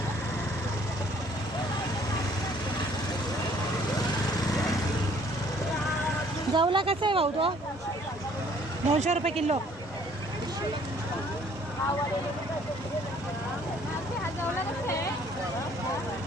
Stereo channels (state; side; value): normal; both; correlation 0.59